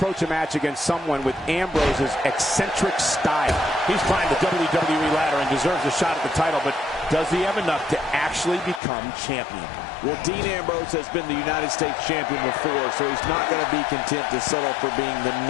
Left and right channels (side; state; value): right; drops out; at 8.8 s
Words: a match against someone with Ambrose's eccentric style? He's climbed the WWE ladder and deserves a shot at the title, but does he have enough to actually become champion? Well, Dean Ambrose has been the United States champion before, so he's not going to be content to settle for being the